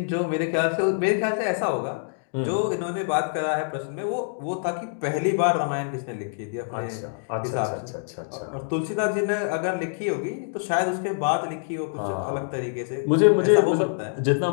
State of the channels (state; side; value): silent; right; digital silence